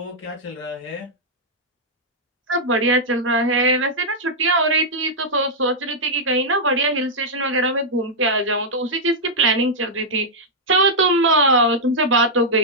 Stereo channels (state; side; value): normal; both; correlation -0.06